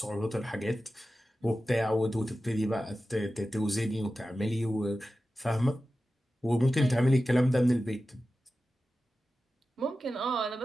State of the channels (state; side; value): normal; both; correlation 0.94